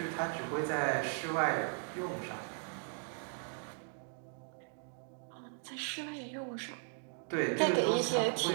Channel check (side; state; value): left; silent; 53 dB below the other